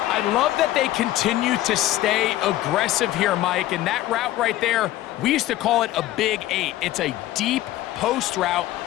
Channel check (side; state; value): right; quieter; 15.0 dB